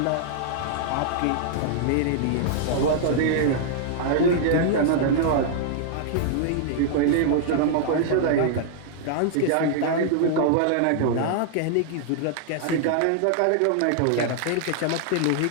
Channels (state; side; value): different; both; correlation -0.01